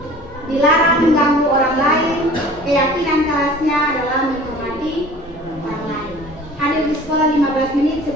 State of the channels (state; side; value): normal; both; correlation 0.46